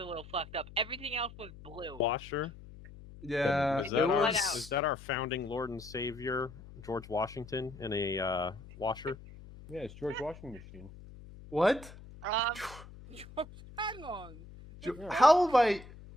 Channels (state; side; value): noise; left; hum, 17 dB below the sound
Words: a little fucked up. Everything else was blue. Washer. Yeah, Is that our founding Lord and Savior George Washington in a washer? Yeah, it's George Washington machine. What? Hang on. How have I,